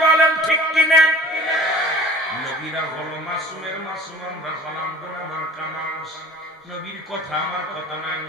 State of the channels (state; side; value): normal; both; correlation 0.44